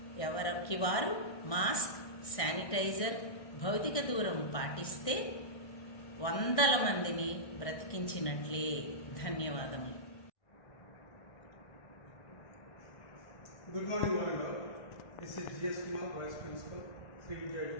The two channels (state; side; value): late; right; 1.6 ms